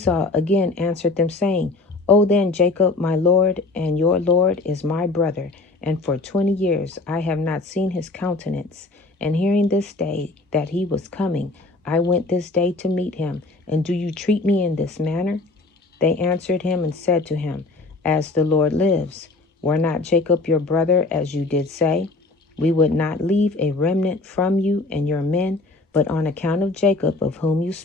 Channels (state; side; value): quieter; right; 3.3 dB